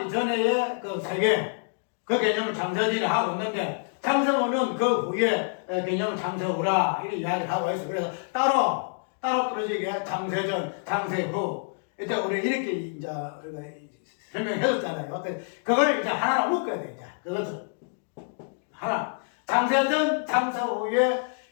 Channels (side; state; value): right; silent; digital silence